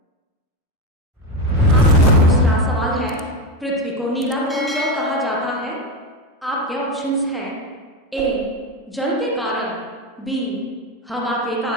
आपका दूसरा सवाल है, पृथ्वी को नीला ग्रह क्यों कहा जाता है? आपके ऑप्शंस हैं ए जल के कारण, बी हवा के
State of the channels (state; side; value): normal; both; correlation 0.14